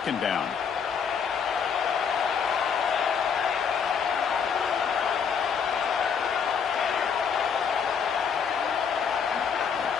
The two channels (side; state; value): right; quieter; 6.6 dB